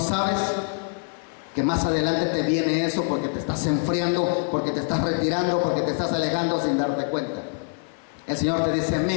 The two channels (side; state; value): right; silent; 55 dB below the other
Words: que más adelante te viene eso porque te estás enfriando, porque te estás retirando, porque te estás alejando sin darte cuenta. El Señor te dice,